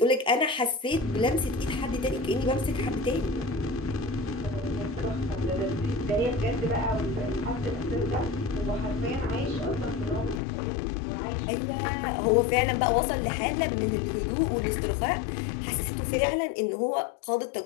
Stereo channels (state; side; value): drops out; right; at 10.4 s